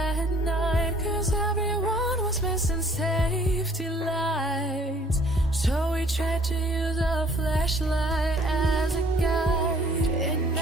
night, 'cause everyone was missing safety lights. So we tried to use a flashlight as a guide. And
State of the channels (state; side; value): normal; both; correlation 0.58